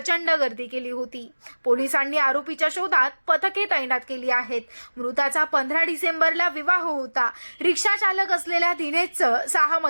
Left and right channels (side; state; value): both; inverted; correlation -1.00